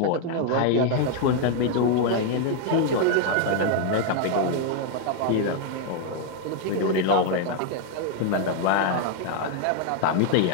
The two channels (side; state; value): both; different; correlation 0.00